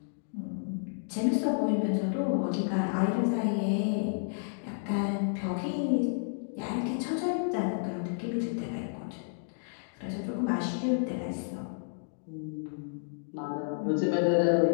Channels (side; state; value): right; silent; digital silence